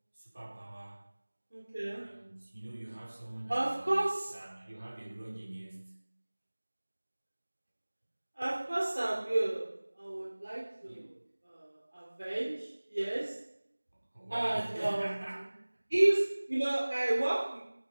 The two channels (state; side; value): inverted; both; correlation -1.00